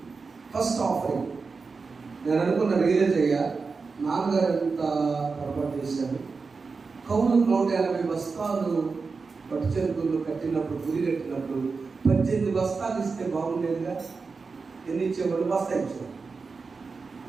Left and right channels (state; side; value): quieter; left; 4.6 dB